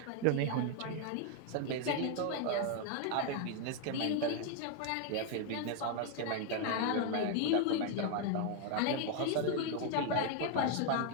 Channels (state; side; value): different; both; correlation 0.00